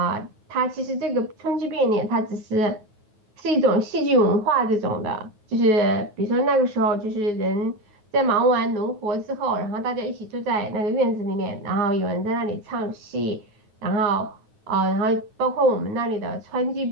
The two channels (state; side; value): late; left; 9.6 ms